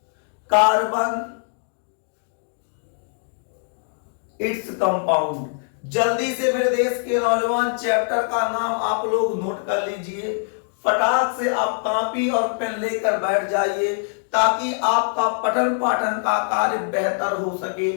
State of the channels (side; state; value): right; silent; digital silence